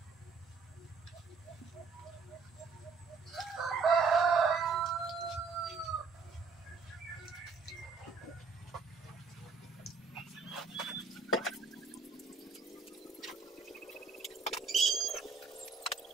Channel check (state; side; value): quieter; left; 4.8 dB